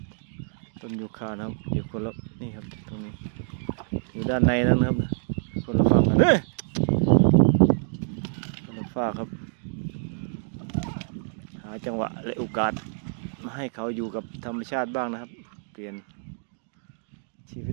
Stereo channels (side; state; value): left; silent; digital silence